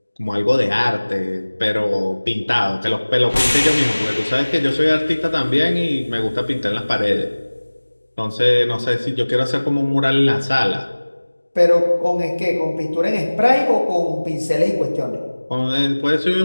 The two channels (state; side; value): inverted; both; correlation -1.00